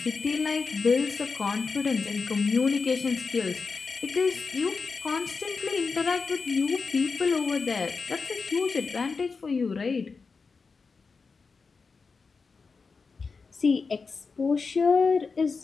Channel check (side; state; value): right; quieter; 4.7 dB